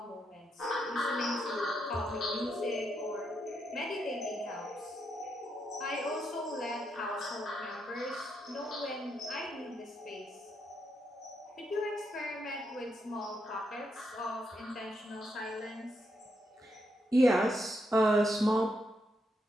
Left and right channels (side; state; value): both; normal; correlation 0.81